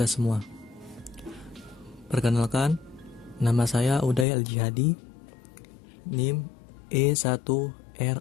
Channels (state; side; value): drops out; right; at 4.2 s